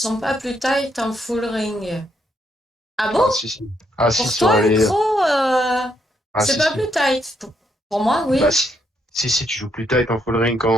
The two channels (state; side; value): normal; both; correlation 0.75